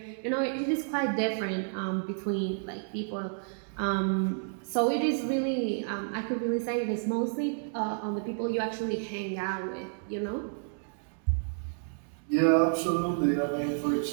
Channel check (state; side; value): silent; left; digital silence